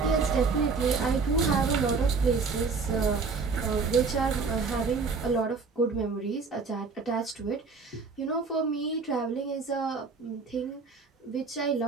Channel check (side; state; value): left; quieter; 4.6 dB